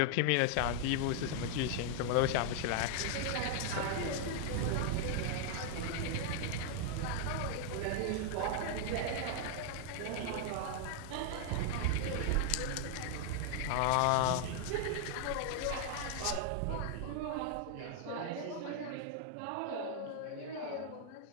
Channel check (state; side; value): different; both; correlation 0.00